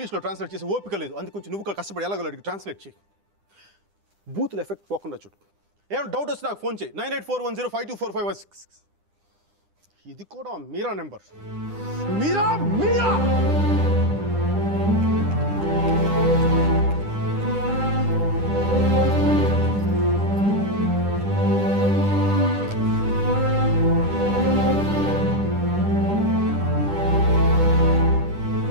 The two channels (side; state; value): left; late; 9.9 ms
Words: ట్రాన్స్లేట్ చేసి ఓపిక లేదు. అందుకు కొంచెం నువ్వు కష్టపడి ఎలాగలడికి ట్రాన్స్లేట్ చేయి. బూతులు ఎఫెక్ట్ పోకుండా చూడు. ఏమైనా డౌట్ వస్తే నాకు ఫోన్ చేయి. 9841052456. ఇది కూడా మీరా నెంబర్. మీరా మీరా